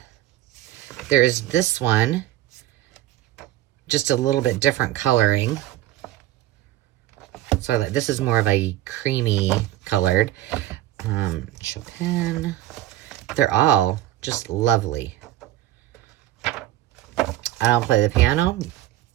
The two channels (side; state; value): left; quieter; 14.3 dB